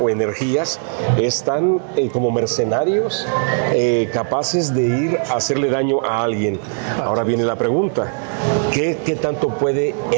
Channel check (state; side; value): silent; left; 65 dB below the other